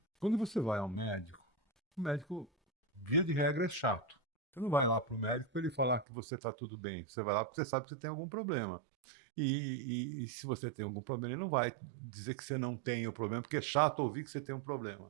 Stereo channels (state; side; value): drops out; left; at 6.1 s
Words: Quando você vai ao médico, o médico, via de regra, é chato. Você não vai lá para o médico para ele falar que você está tudo bem. Você vai lá porque você sabe que você tem algum problema. E se você tem algum problema, ele não vai dizer que você não tem o problema, porque é chato ouvir que você tem um